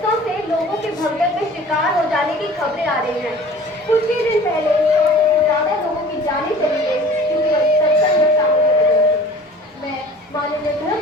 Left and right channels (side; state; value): both; normal; correlation 0.45